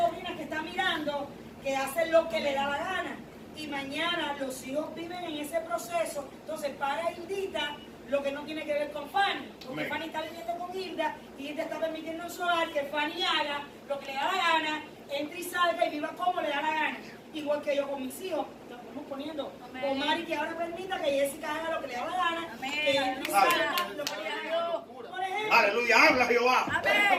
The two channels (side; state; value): both; identical; correlation 1.00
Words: que están mirando que hacen lo que le da la gana. Y mañana los hijos viven en ese proceso. Entonces, para Hildita, lo que no tiene que ver con Fanny. Porque Fanny está viviendo con Hilda y Hilda está permitiendo en su hogar que Fanny haga lo que le da la gana, entre y salga y viva como le da la gana. Igual que yo con mis hijos, lo estamos poniendo. Con Mari, que ahora permita que Jessica haga lo que le da la gana, que entre y salga lo que le da la gana. Por ejemplo, Aleluya, habla Jehová.